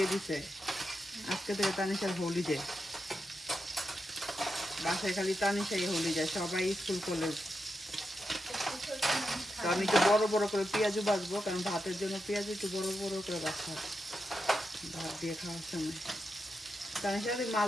দিছে, আজকে থেকে তানিশার হলিডে। বাসায় খালি তানিশাই হলিডে, সবাই স্কুল কলেজ। তো আমি একটু বড় বড় করে পেঁয়াজও বাছবো, কারণ ভাতের জন্য পেঁয়াজ একটু বড় বড় করে বাছতে হবে ভাত দিয়ে খাওয়ার সময়। তানিশা,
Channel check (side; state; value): both; normal; correlation 0.87